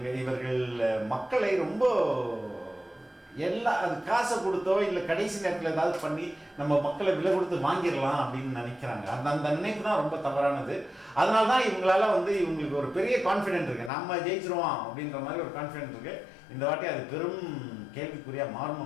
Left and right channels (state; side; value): drops out; right; at 13.9 s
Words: இவர்கள் மக்களை ரொம்ப அது காசை கொடுத்தோ இல்லை கடைசி நேரத்தில் ஏதாவது பண்ணி நம்ம மக்களை விலை கொடுத்து வாங்கிடலாம் அப்படின்னு நினைக்கிறாங்க. அந்த நினைப்பு தான் ரொம்ப தவறானது. அதனால தான் இவங்களால இவங்களுக்கு ஒரு பெரிய கான்ஃபிடென்ட் இருக்குது, நம்ம ஜெயிச்சிருவோம் அப்படின்ற மாதிரி ஒரு கான்ஃபிடென்ட் இருக்குது. இந்த வாட்டி அது பெரும் கேள்விக்குறியாக மாறும்